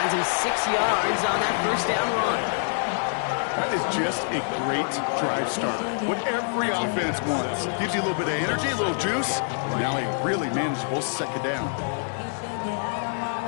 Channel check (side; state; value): right; silent; digital silence